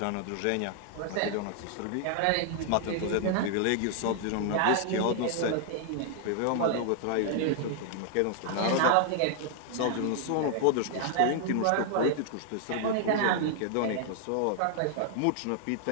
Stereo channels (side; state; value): both; different; correlation 0.00